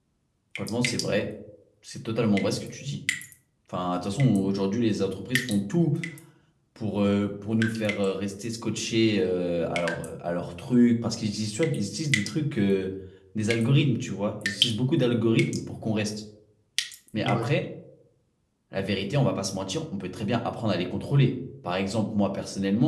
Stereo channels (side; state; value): both; identical; correlation 1.00